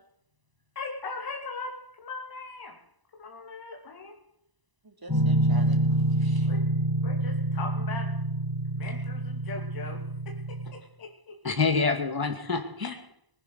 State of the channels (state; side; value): late; left; 1.0 ms